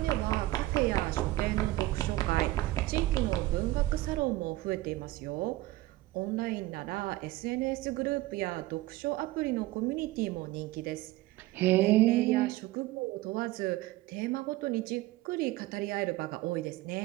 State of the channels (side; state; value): left; quieter; 17.6 dB